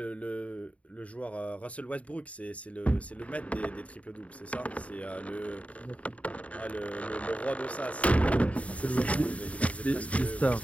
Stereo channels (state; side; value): late; right; 0.066 ms